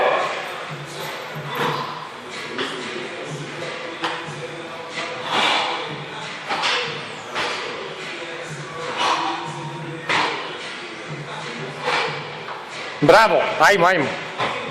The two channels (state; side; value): identical; both; correlation 1.00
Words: Bravo, ajmo, ajmo.